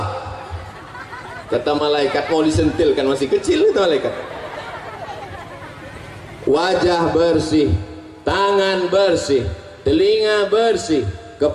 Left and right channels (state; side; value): identical; both; correlation 1.00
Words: Kata malaikat, mau disentilkan, masih kecil itu malaikat. Wajah bersih, tangan bersih, telinga bersih,